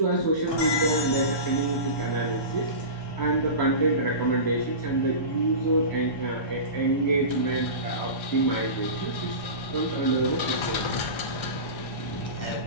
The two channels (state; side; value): late; right; 1.3 ms